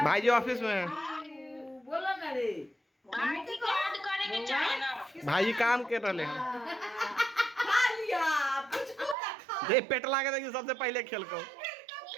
भाई जी ऑफिस में है। बोलो ना रे भाई जी काम कर रहे हैं। खा लिया पुचकू का खा ये पेटला के देखिए सबसे पहले खेल को।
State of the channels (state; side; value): drops out; left; at 9.2 s